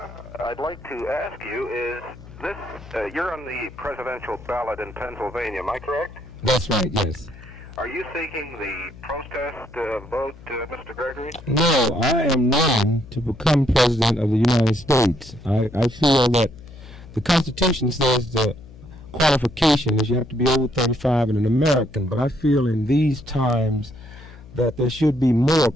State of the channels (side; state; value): left; noise; hum, 18 dB below the sound